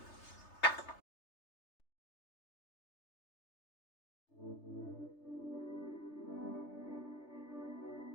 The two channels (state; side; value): late; right; 3.3 ms